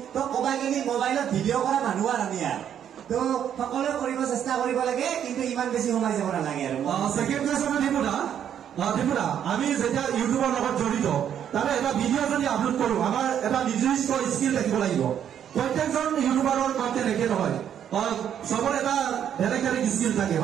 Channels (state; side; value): quieter; left; 9.4 dB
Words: তো ক'বাগিনি মোবাইলত ভিডিঅ' কৰা মানুহ আৰু আমি আৰু তো সকলোৱে কৰিব চেষ্টা কৰিব লাগে কিন্তু ইমান বেছি সোমাই যাব নালাগে আৰু সেকেন্ড কোয়েশ্চন দীপুদা আমি যেতিয়া ইউটিউবৰ লগত জড়িত তাৰে এটা ভিডিঅ' যদি আপলোড কৰো আমাৰ এটা নিৰ্দিষ্ট স্কিল থাকিব লাগিব প্ৰত্যেকজন ইউটিউবাৰৰ কণ্টেণ্ট একে নহয় চবৰ এটা বেলেগ বেলেগ স্কিল থাকে